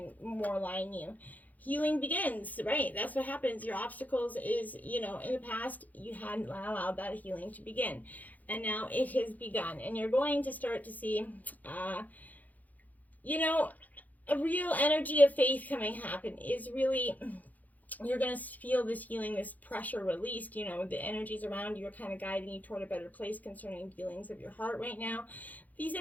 more align you. Healing begins, right? That's what happens. Your obstacles is, in the past, you hadn't allowed that healing to begin. And now it has begun. And you're going to start to see, a real energy of faith happen is really, you're going to feel this healing, this pressure released. The energies around you are kind of guiding you toward a better place concerning feelings of your heart right now. These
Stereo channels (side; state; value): right; late; 0.080 ms